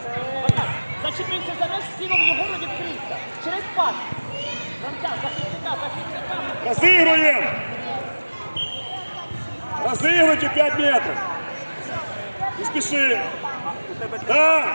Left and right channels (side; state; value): both; inverted; correlation -1.00